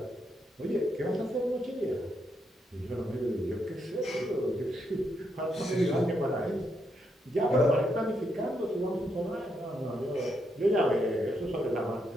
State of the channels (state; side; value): normal; both; correlation 0.79